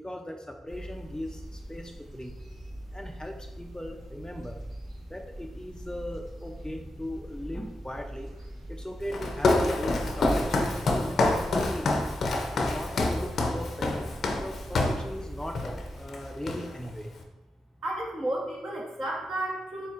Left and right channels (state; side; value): normal; both; correlation 0.88